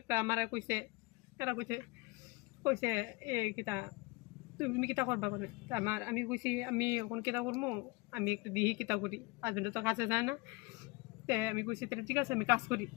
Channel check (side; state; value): right; quieter; 24.8 dB